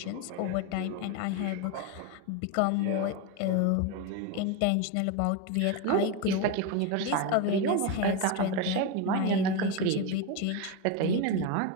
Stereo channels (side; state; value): both; different; correlation 0.03